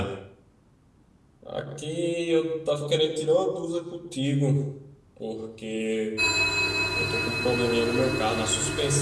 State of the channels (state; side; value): identical; both; correlation 1.00